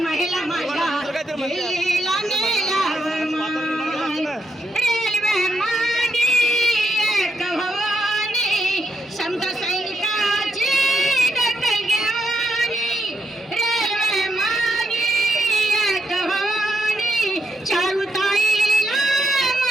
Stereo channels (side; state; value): both; normal; correlation 0.79